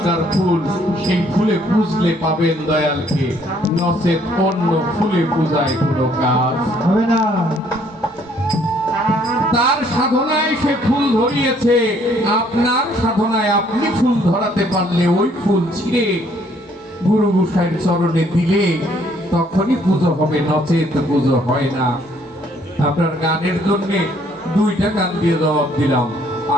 ফুল, সেই ফুলে পুজলে পাবেন দয়ালকে, নচেত অন্য ফুলে পূজায় কোনো কাজ হবে না। তার সাধনায় সে ফুল ধরিয়েছে, আপনার সাধনায় আপনি ফুল ধরাতে পারলে ওই ফুল ছিঁড়ে গুরু গোসাইয়ের চরণে দিলে তখনই পুজো হবে, নচেত পুজো হয় না। আপনার গানের জন্য 2টা গান দিয়ে জবাব দিলাম,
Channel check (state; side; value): normal; both; correlation 0.64